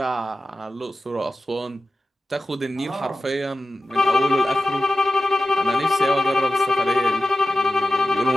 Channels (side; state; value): both; normal; correlation 0.94